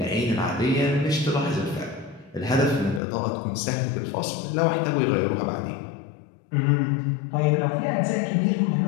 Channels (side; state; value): right; drops out; at 3.0 s